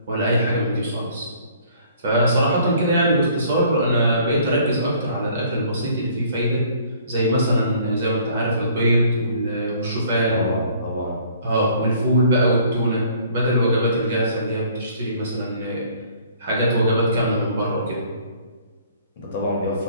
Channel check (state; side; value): inverted; both; correlation -0.57